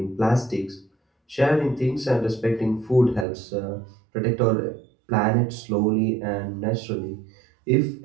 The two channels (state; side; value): drops out; left; at 3.2 s